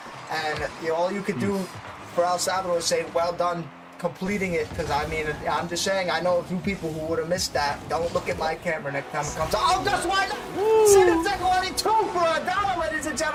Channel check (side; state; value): both; identical; correlation 1.00